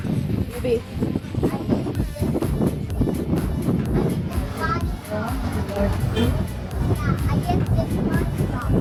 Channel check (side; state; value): both; identical; correlation 1.00